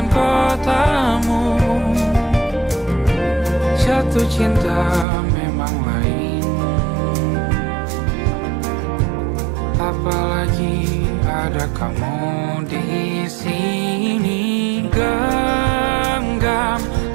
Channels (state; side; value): drops out; left; at 5.1 s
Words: kotamu. Jatuh cinta memang lain, apalagi ada kamu di sini. Genggam